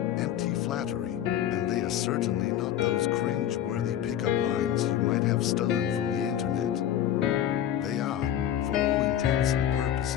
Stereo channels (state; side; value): quieter; right; 10.9 dB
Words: flattery, and they are certainly not those cringe-worthy pickup lines you might have stolen from the internet. They are, for all intents and